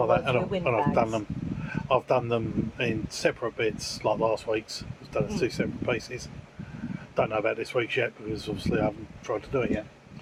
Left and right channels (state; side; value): identical; both; correlation 1.00